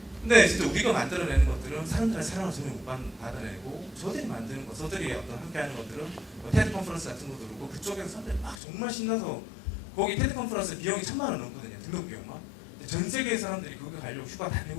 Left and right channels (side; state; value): right; drops out; at 8.6 s